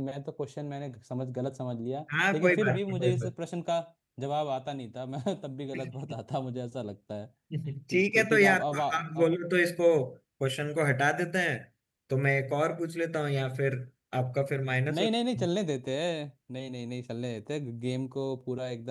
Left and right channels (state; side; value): identical; both; correlation 1.00